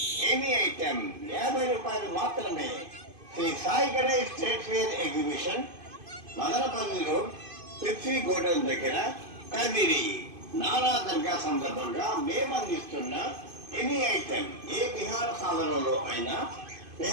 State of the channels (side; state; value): left; late; 2.5 ms